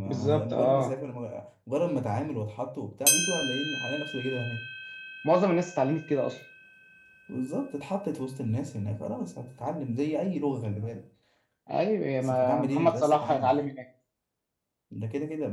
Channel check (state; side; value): identical; both; correlation 1.00